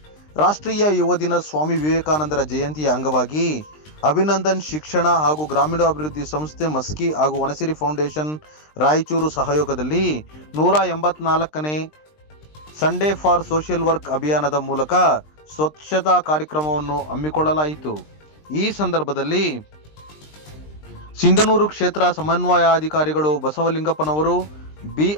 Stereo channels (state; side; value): late; right; 20 ms